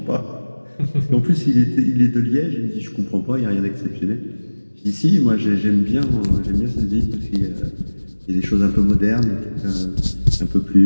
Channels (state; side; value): inverted; both; correlation -1.00